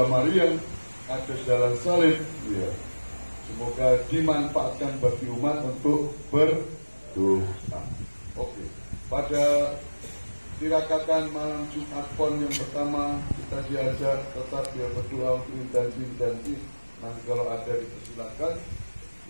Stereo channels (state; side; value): inverted; both; correlation -1.00